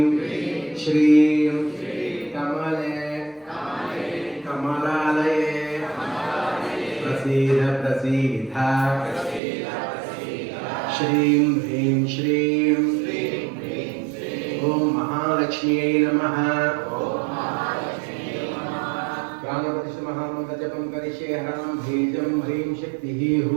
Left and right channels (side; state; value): left; drops out; at 9.4 s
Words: శ్రీం కమలే కమలాలయే ప్రసీద ప్రసీద శ్రీం హ్రీం శ్రీం ఓం మహాలక్ష్మ్యై నమః ప్రాణప్రతిష్ఠ మహామంత్ర జపం కరిష్యే హరం బీజం హ్రీం శక్తిః